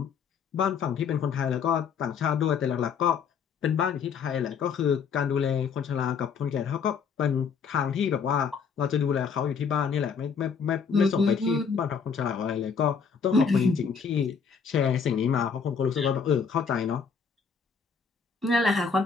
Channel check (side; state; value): right; quieter; 6.2 dB